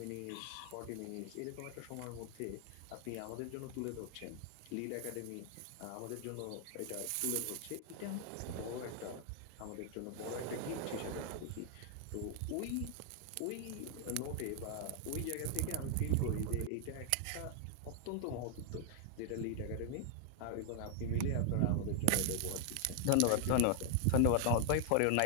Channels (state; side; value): different; both; correlation 0.00